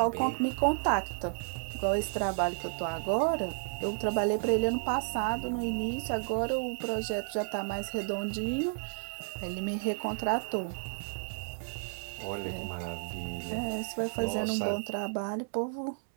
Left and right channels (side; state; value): left; silent; 56 dB below the other